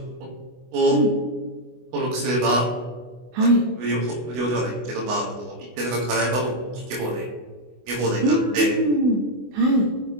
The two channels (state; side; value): late; left; 24 ms